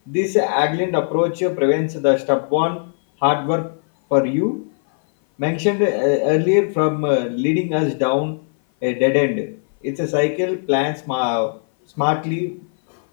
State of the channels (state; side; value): silent; right; 58 dB below the other